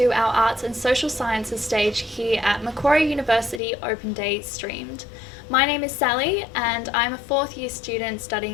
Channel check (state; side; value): drops out; right; at 3.6 s